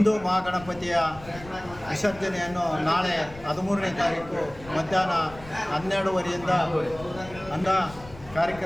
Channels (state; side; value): noise; left; rumble, 18 dB below the sound